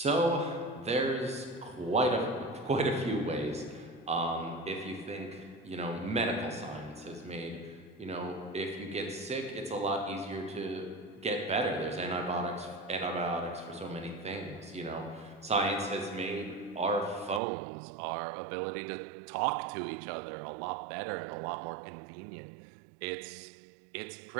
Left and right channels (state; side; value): drops out; left; at 17.4 s